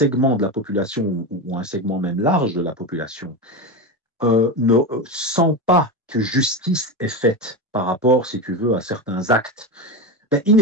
de la population, ou un segment même large de la population, ne sent pas que justice est faite par rapport, si tu veux, à certains actes, ben,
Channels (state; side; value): normal; both; correlation 0.18